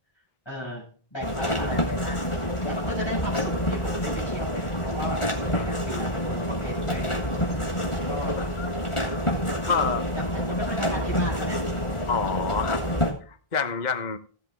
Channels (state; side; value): late; right; 1.4 ms